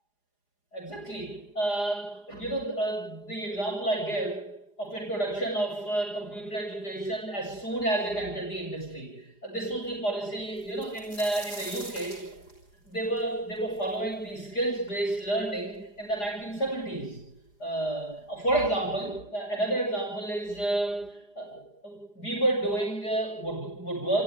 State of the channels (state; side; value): late; right; 4.9 ms